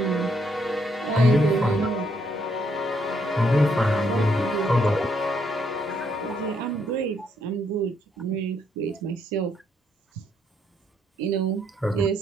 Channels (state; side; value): normal; both; correlation 0.73